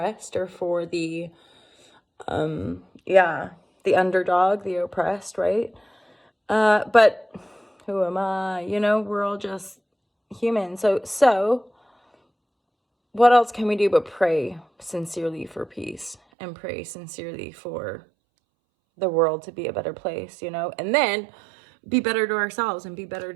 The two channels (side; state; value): left; drops out; at 16.2 s